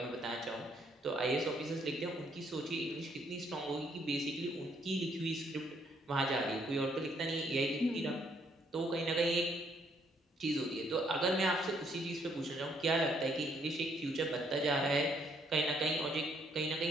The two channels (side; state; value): both; normal; correlation 0.69